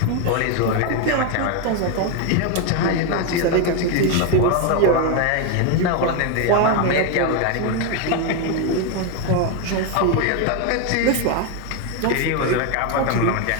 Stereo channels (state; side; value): different; both; correlation 0.01